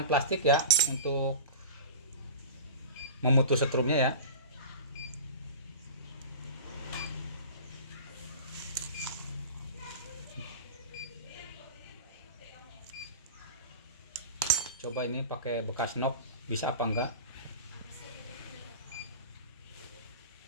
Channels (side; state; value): both; inverted; correlation -0.33